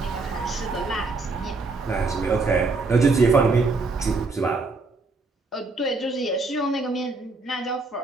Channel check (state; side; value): quieter; left; 3.6 dB